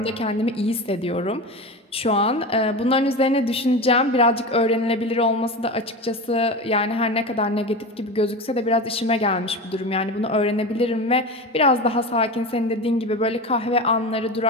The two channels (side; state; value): both; normal; correlation 0.26